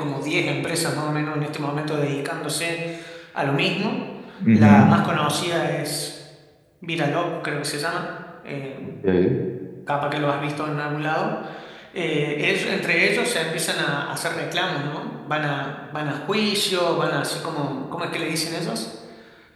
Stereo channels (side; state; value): both; identical; correlation 1.00